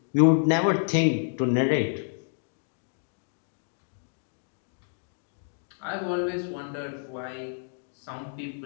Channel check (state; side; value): silent; right; digital silence